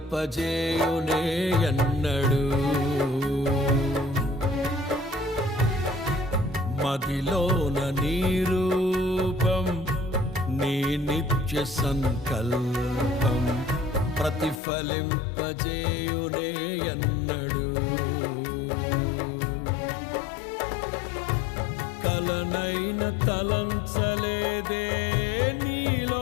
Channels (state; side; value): drops out; right; at 14.6 s